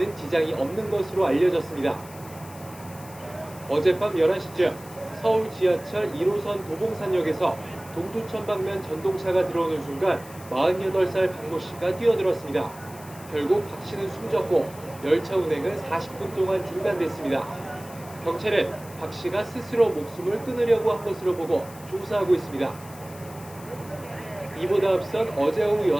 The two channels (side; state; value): left; noise; hiss, 19 dB below the sound